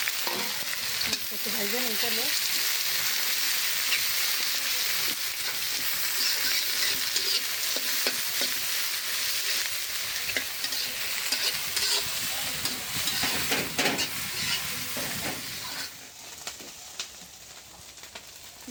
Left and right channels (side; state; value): both; identical; correlation 1.00